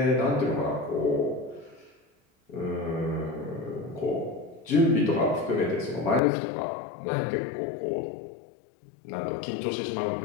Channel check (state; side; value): drops out; right; at 6.2 s